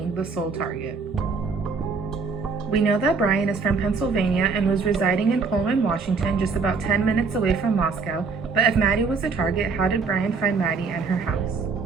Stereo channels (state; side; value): quieter; left; 4.8 dB